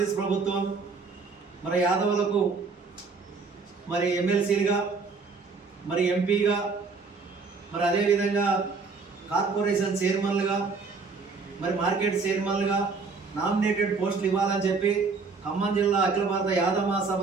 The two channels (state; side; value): quieter; left; 4.6 dB